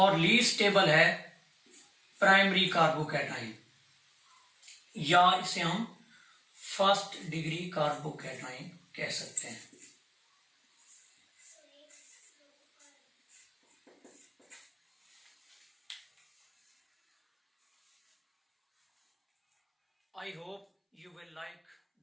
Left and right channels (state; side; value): identical; both; correlation 1.00